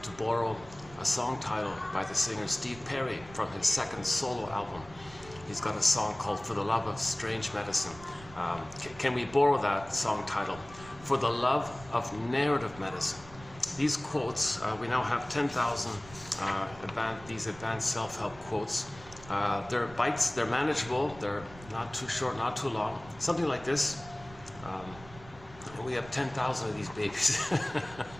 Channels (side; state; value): right; noise; rumble, 19 dB below the sound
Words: to borrow a song title by the singer Steve Perry from his second solo album. He's got a song called For the Love of Strange Medicine. Can we borrow that song title? For the Love of Narrative Medicine. These quotes, we now have 10,000 these advanced self-help quotes. They're bites, they're manageable, they're not too short, not too long. Something like this. And we have 10,000 of these babies.